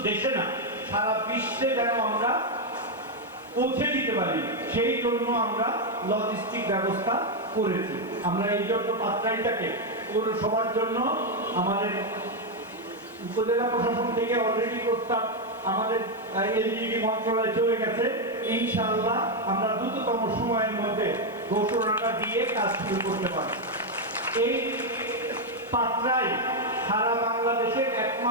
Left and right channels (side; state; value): left; noise; hiss, 27 dB below the sound